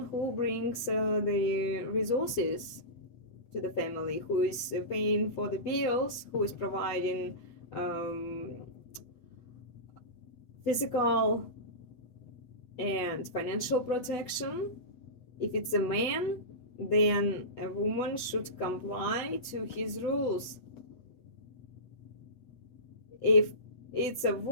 who brings the resources to the family, who is paying for the bills, who is providing physical and financial protection. If it's a man, then a woman should comply to his rules. If it's a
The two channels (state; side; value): late; right; 8.1 ms